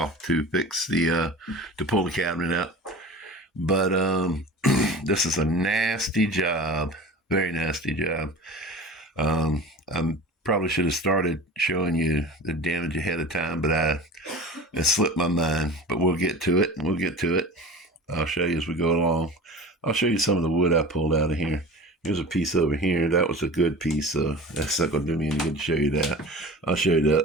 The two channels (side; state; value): both; normal; correlation 0.36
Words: to fix to pull the cabinet out. But this is a nasty job, very nasty job. I probably should have started showing you the damage ahead of time, but it slipped my mind. But we'll get to it. I'll show you as we go along. I'll show you some of the wood I pulled out of here. Here's a piece over here. That was a good piece, so that's not going to do me any good to show you that. I'll show you